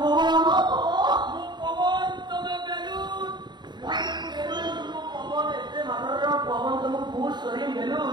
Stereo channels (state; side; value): late; left; 0.21 ms